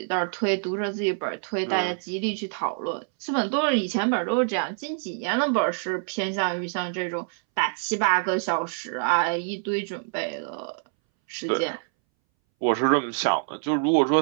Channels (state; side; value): silent; left; 61 dB below the other